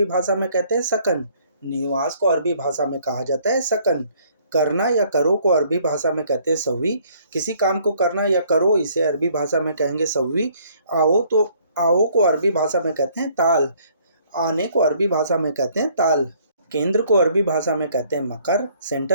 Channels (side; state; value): both; inverted; correlation -0.62